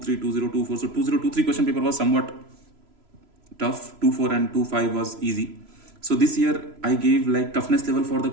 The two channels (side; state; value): left; late; 3.0 ms